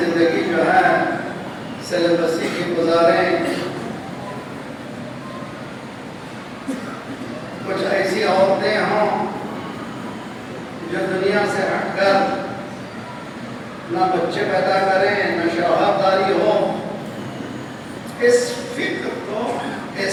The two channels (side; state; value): both; identical; correlation 1.00